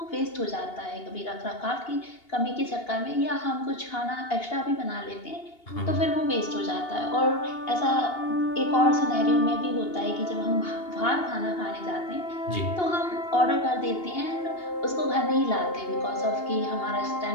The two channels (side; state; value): right; late; 2.8 ms